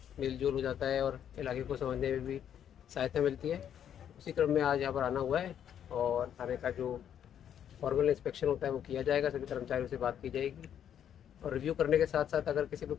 मेल जोल हो जाता है और इलाके को समझने में भी सहायता मिलती है। उसी क्रम में आज यहाँ पर आना हुआ है और थाने का जो फॉर्मल इंस्पेक्शन होता है वो किया जाएगा। सभी कर्मचारियों से बात की जाएगी और रिव्यू करने के साथ साथ अगर किसी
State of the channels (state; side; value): quieter; right; 9.4 dB